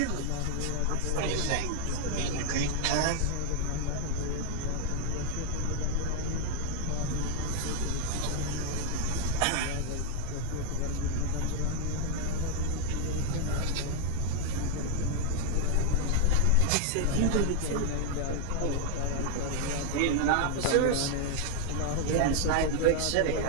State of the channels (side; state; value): both; different; correlation 0.00